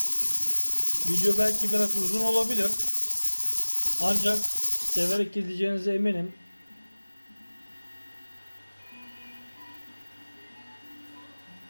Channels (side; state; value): both; inverted; correlation -1.00